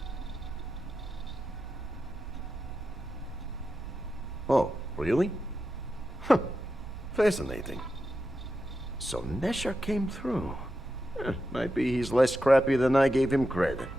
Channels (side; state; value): both; normal; correlation 0.89